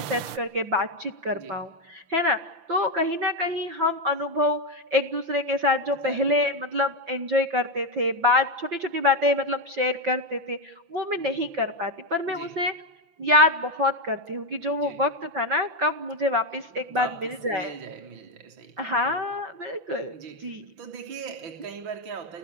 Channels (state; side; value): late; left; 5.9 ms